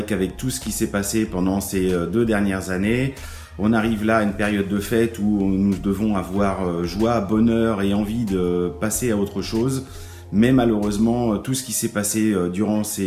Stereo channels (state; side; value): identical; both; correlation 1.00